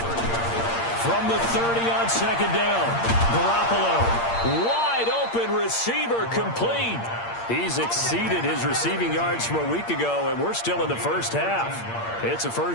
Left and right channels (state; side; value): late; right; 8.7 ms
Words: From the 30 on 2nd down, Garoppolo, wide open receiver, complete. He's exceeded his receiving yards from a week ago, and we're still in the first half. It's a